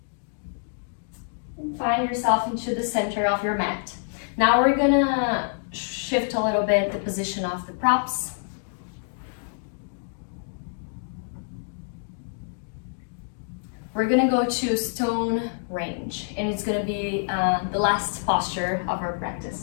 And find yourself into the center of your mat. Now we're gonna shift a little bit the position of the props. We're gonna go to stone range, and it's gonna be the last posture of our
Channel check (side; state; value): right; silent; digital silence